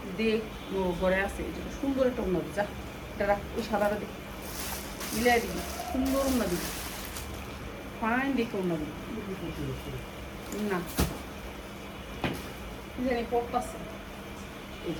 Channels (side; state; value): both; identical; correlation 1.00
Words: দেখ, ঘরে আছে সুন্দর একটা ওড়না, যা এটা রাখ, ওই সাদাটা দেখ, মিলাই দিবি, সুন্দর ওড়না দিবি, ফাইন দেখে ওড়না দিবি না জানি পড়তাছে। এই